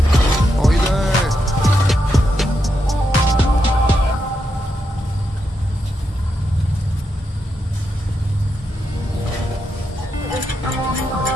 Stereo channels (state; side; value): normal; both; correlation 0.83